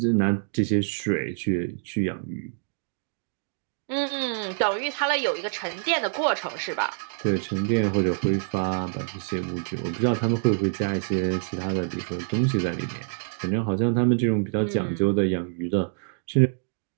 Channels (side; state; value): left; silent; digital silence